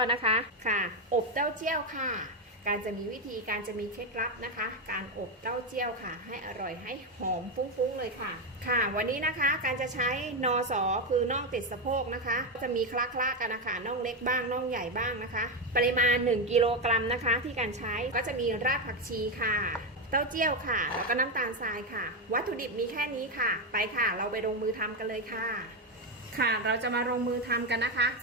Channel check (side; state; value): both; normal; correlation 0.09